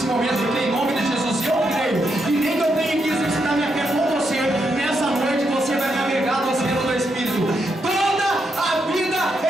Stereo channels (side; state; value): both; normal; correlation 0.81